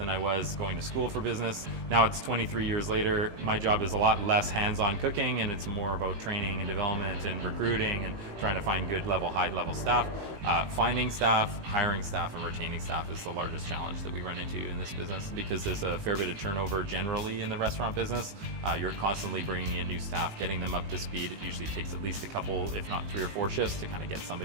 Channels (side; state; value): left; late; 19 ms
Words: I was going to school for business. Now it's 23 years later. My job is a lot less hands-on cooking, and it's more about training and development and recruiting and trying to find good level, high level staff. Finding staff, hiring staff, and retaining staff is the largest challenge that we run into in this business because there's a fair bit of turnover generally in the restaurant business. You're constantly bringing in new staff, getting them up to speed. It usually takes at least a couple, if not 3 or 4 shifts to kind of get